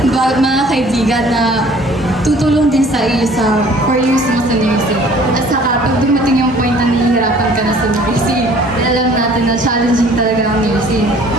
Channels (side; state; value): both; normal; correlation 0.53